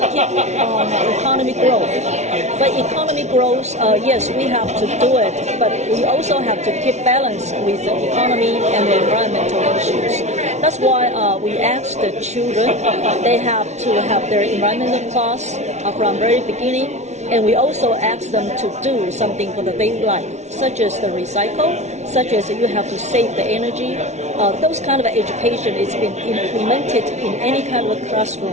keep on economic growth. But economic growth, yes, we have to do it, but we also have to keep balance with the economy and the environmental issues. That's why we ask the children, they have to have their environmental class from very beginning. And we also ask them to do something for the daily life, such as the recycle, such as you have to save the energy. Those kind of education is been implemented in any kind of a classroom.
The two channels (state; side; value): late; left; 0.32 ms